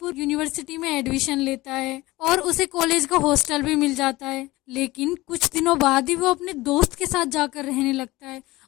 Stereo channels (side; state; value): right; quieter; 19.5 dB